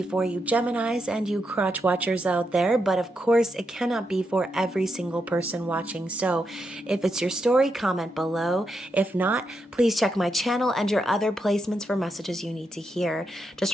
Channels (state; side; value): normal; both; correlation 0.83